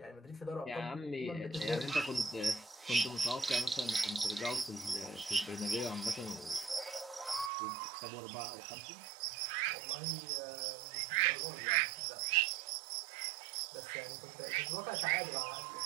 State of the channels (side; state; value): left; drops out; at 7.5 s